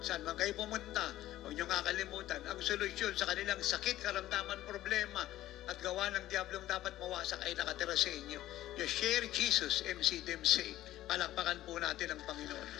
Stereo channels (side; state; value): right; quieter; 14.4 dB